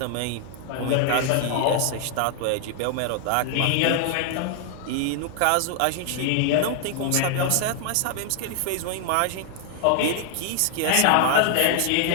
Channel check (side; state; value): both; different; correlation 0.00